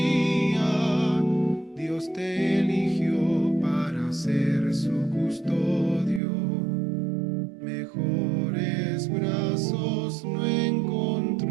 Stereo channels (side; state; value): left; drops out; at 6.2 s